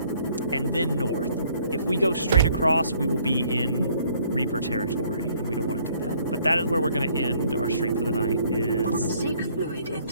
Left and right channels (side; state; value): both; inverted; correlation -0.62